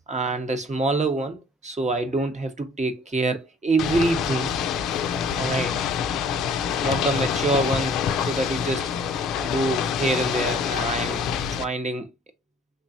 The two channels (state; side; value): normal; both; correlation 0.53